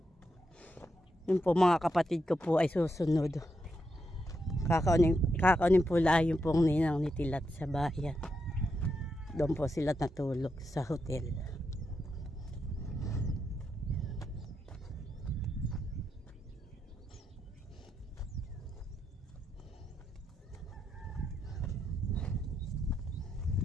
Yung po mga kapatid ko po ay susunod. Kakaunin po lang yung pong ninang ni Tilat sa bayan. Doon po sila natulog sa hotel.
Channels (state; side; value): normal; both; correlation 0.83